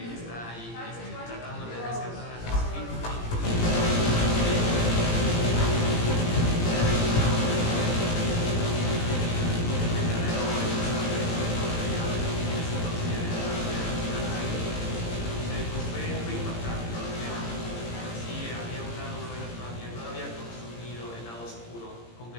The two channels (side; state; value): right; late; 17 ms